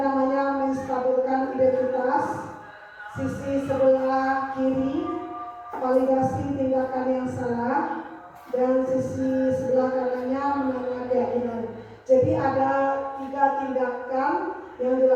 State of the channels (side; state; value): both; identical; correlation 1.00